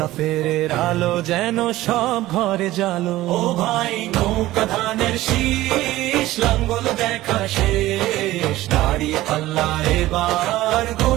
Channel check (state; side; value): quieter; left; 16.4 dB